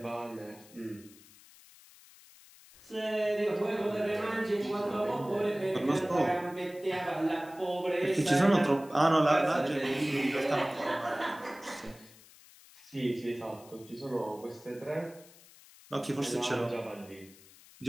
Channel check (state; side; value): noise; left; hiss, 23 dB below the sound